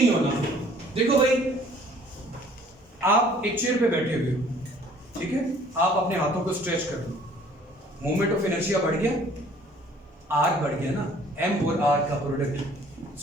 होना। देखो भाई, आप एक चेयर पे बैठे हुए हो, ठीक है? आप अपने हाथों को स्ट्रेच कर दो, मोमेंट ऑफ इनर्शिया बढ़ गया, आर बढ़ गया ना, एम और आर का प्रोडक्ट।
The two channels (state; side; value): normal; both; correlation 0.55